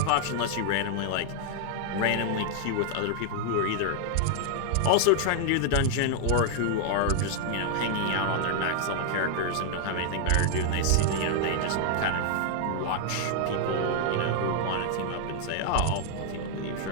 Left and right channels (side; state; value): both; different; correlation 0.00